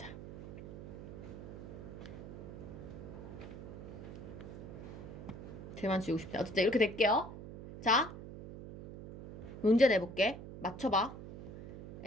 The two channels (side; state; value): right; noise; hum, 11 dB below the sound